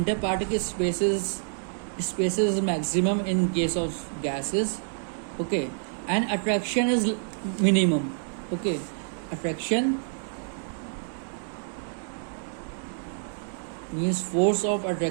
spaces maximum in case of gases. Okay, and attraction is minimum. Okay, attraction means force of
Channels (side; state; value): left; silent; 60 dB below the other